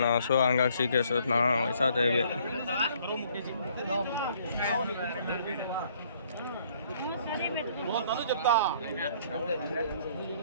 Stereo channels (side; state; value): both; inverted; correlation -0.62